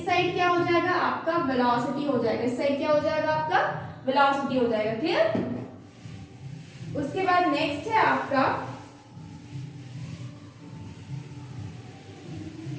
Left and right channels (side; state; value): both; identical; correlation 1.00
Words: साइड क्या हो जाएगा, आपका वेलोसिटी हो जाएगा, इस साइड क्या हो जाएगा, आपका वेलोसिटी हो जाएगा। क्लियर। उसके बाद नेक्स्ट है आपका